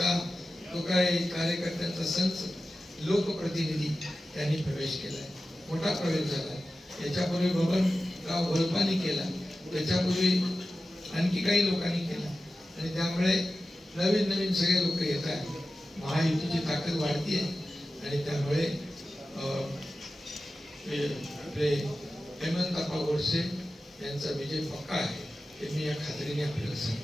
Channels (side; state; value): both; normal; correlation 0.94